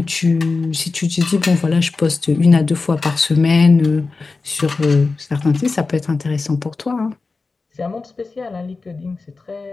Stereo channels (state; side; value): quieter; right; 4.0 dB